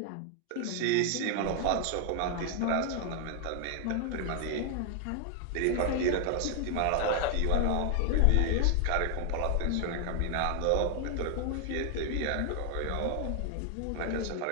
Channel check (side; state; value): both; different; correlation 0.00